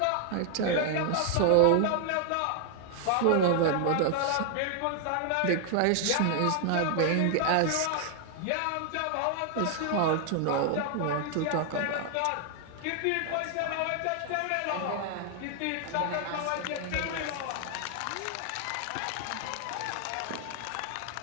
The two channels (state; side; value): different; both; correlation 0.00